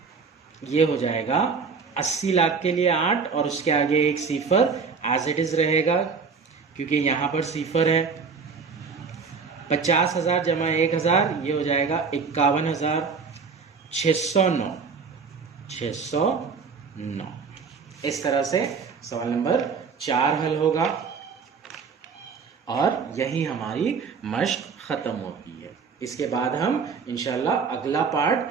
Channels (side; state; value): left; quieter; 5.3 dB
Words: ये हो जाएगा 80 लाख के लिए 8 और उसके आगे एक सिफर एज इट इज रहेगा क्योंकि यहां पर सिफर है। 50,000 जमा 1,000 ये हो जाएगा 51,609 609। इस तरह से सवाल नंबर 4 हल होगा और यही हमारी मश्क खत्म होती है। इसके बाद हम इंशाल्लाह अगला पार्ट